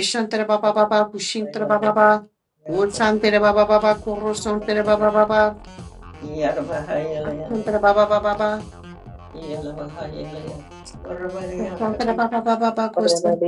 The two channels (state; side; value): identical; both; correlation 1.00